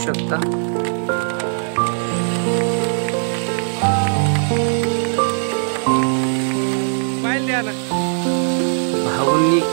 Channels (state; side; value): silent; left; 63 dB below the other